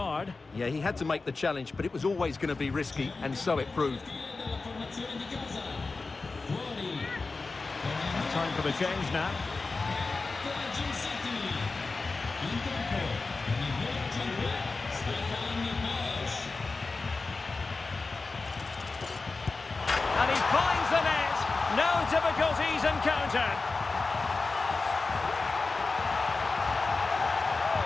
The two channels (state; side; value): quieter; right; 3.9 dB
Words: Yeah, he had to make the challenge, but it was always going to be risky, and so it proved. Time for the change now. And he finds the net. No difficulties encountered.